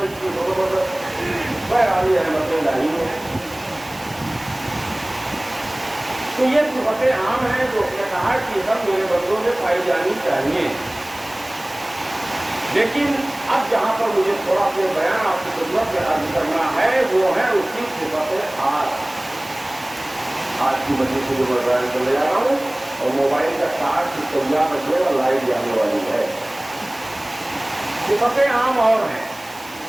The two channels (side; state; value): right; noise; hiss, 21 dB below the sound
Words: تو یہ صفتیں عام ہیں جو اس نے کہا کہ سب میرے بندوں میں پائی جانی چاہیے، لیکن اب جہاں پر مجھے تھوڑا سا بیان آپ کی خدمت میں عرض کرنا ہے وہ ہے اس کی صفت خاص۔ آج کی وجہ سے جو میں بیان کر لے جا رہا ہوں، اور موبائل کا چارج کی تیار رکھے اور لائٹ جانے والی ہے۔ صفتیں عام اور ہیں،